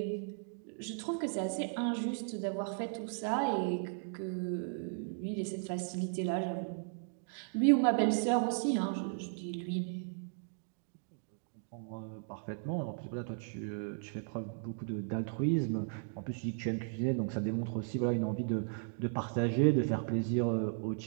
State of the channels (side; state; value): left; silent; digital silence